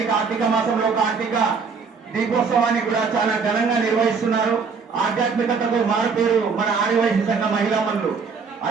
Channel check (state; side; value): quieter; left; 5.3 dB